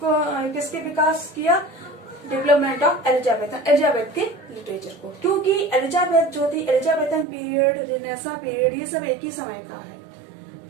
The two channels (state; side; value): drops out; left; at 7.2 s